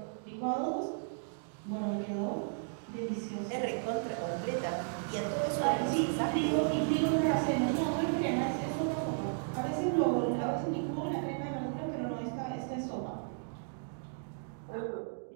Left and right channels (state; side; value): silent; left; digital silence